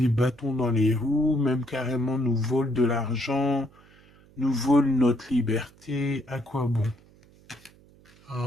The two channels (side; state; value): right; noise; hum, 27 dB below the sound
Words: bâtons dans les roues, même carrément nous vole de l'argent, nous vole notre liberté. À quoi bon?